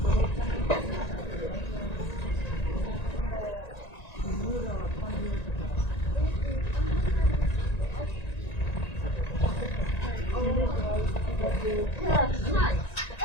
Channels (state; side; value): late; right; 1.9 ms